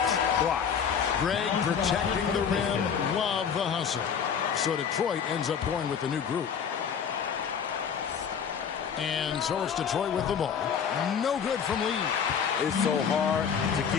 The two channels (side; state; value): right; quieter; 7.2 dB